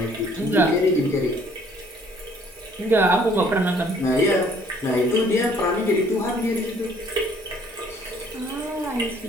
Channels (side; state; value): both; normal; correlation 0.60